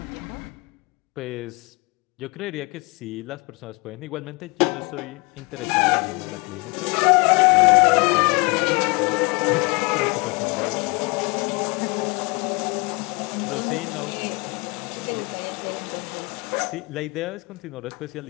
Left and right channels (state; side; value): quieter; right; 28.0 dB